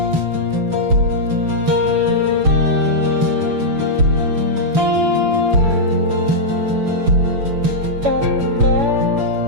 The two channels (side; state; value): left; late; 7.0 ms